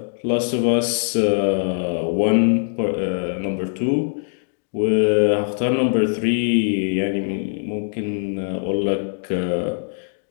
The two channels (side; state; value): right; silent; digital silence